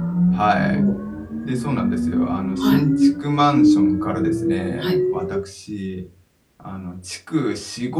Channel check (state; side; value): identical; both; correlation 1.00